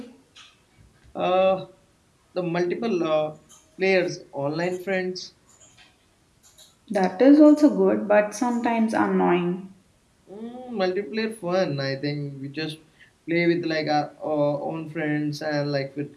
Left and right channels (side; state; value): both; identical; correlation 1.00